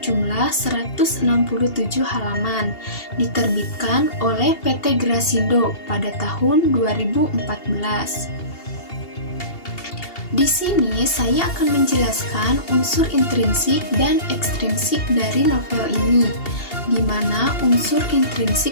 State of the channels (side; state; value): right; late; 2.8 ms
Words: 167 halaman, diterbitkan oleh PT Grasindo pada tahun 2014. Di sini saya akan menjelaskan unsur intrinsik dan ekstrinsik dari novel ini, di mana unsur